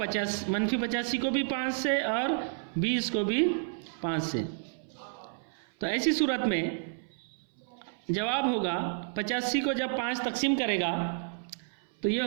को भी 5 से और 20 को भी 5 से। तो ऐसी सूरत में जवाब होगा 85 को जब 5 तकसीम करेगा तो ये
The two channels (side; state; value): left; silent; 57 dB below the other